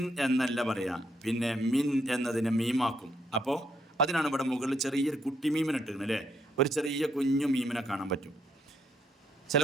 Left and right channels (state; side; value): normal; both; correlation 0.74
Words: എന്നല്ല പറയാ, പിന്നെ മിൻ എന്നതിനെ മീമാക്കും. അപ്പോൾ അതിനാണ് ഇവിടെ മുകളിൽ ചെറിയൊരു കുട്ടി മീമിനെ ഇട്ടിരുന്നത് അല്ലേ? ഒരു ചെറിയ കുഞ്ഞു മീമിനെ കാണാൻ പറ്റും. ചില